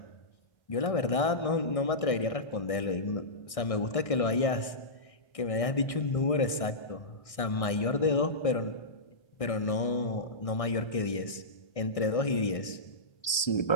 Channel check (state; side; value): late; right; 1.6 ms